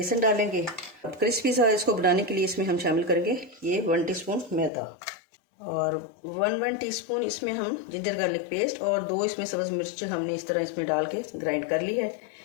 डालेंगे। अब क्रिस्पी सा इसको बनाने के लिए इसमें हम शामिल करेंगे ये 1 टीस्पून मैदा और 1 टीस्पून इसमें हम जिंजर गार्लिक पेस्ट और 2 इसमें सब्ज़ मिर्च हमने इस तरह इसमें डाल के ग्राइंड कर ली है।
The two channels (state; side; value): drops out; right; at 4.7 s